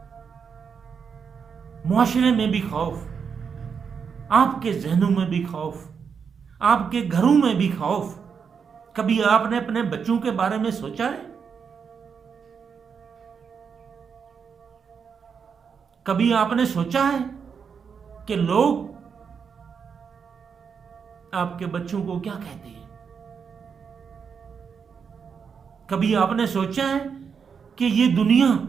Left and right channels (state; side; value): quieter; left; 6.4 dB